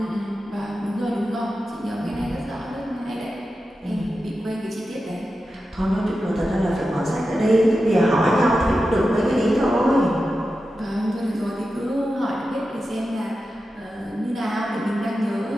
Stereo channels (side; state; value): both; normal; correlation 0.92